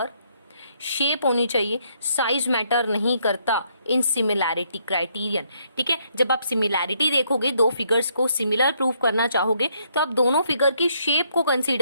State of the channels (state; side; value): inverted; both; correlation -0.71